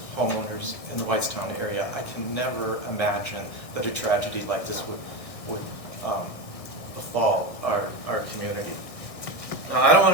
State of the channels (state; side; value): late; right; 1.6 ms